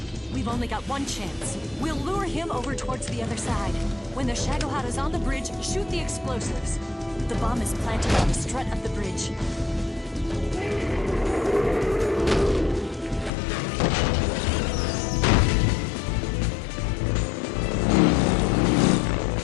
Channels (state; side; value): drops out; right; at 13.3 s